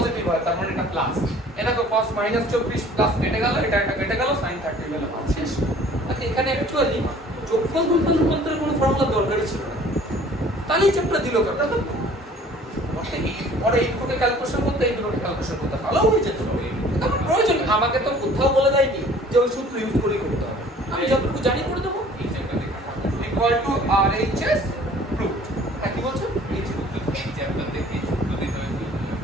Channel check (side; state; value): both; normal; correlation 0.51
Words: হয় তার মানে এটা প্লাস এটা তো cos -24 প্লাস কেটে গেল এটা কেটে গেল sin 30 গেল শেষ আচ্ছা এখানে অ্যাকচুয়ালি যোগফল গুণফল রূপান্তরের কোনো ফর্মুলা দরকারই ছিল না তাহলেই চ্যাপ্টার দিল কথা তো পরে এই দুটোকে ক্যালকুলেশন করতে এই দুটোকে ক্যালকুলেশন করতে ভালো হয়ে যেত আমার প্রয়োজন আমাকে তো কোথাও বলে দেয়নি যে ওই সূত্র ইউজ করেই করতে হবে আমি যতটুকু জানি করে দেবো এই চ্যাপ্টার দেখা RHS প্রুফড কি বলছো এই চ্যাপ্টার দেখে সূত্র দিতে হবে